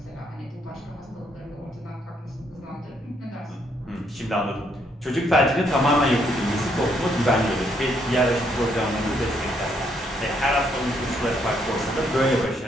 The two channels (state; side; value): normal; both; correlation 0.72